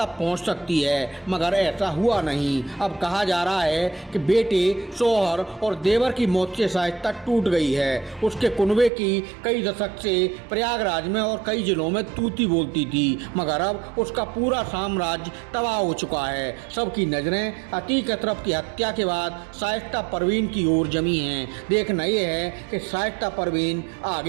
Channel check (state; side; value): drops out; left; at 8.9 s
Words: पहुंच सकती है, मगर ऐसा हुआ नहीं। अब कहा जा रहा है कि बेटे, शौहर और देवर की मौत से शाइस्ता टूट गई है। उसके कुनबे की कई दशक से प्रयागराज में और कई जिलों में तूती बोलती थी, मगर अब उसका पूरा साम्राज्य तबाह हो चुका है। सबकी नजरें अतीक अशरफ की हत्या के बाद शाइस्ता परवीन की ओर जमी हैं। देखना यह है कि शाइस्ता परवीन